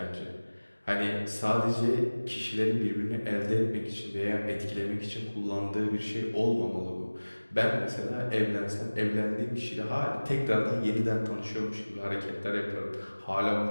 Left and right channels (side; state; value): both; inverted; correlation -1.00